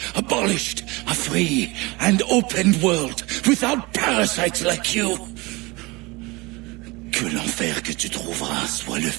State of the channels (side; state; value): left; quieter; 24.1 dB